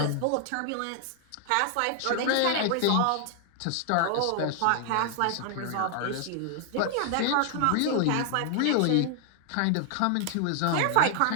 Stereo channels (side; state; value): both; different; correlation 0.00